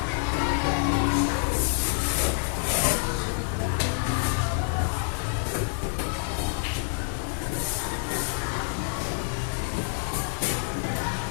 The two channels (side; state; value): right; silent; 60 dB below the other